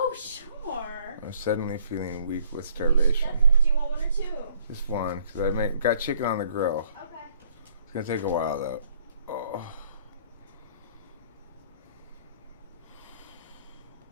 sure. I'm suddenly feeling weak with starvation. Do you want one or two? Just one, because I got chicken on the grill. Okay. It's going to take a while, though. Oh.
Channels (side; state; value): both; inverted; correlation -0.62